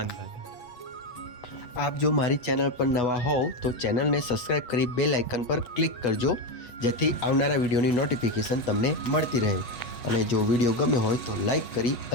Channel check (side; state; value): right; late; 8.2 ms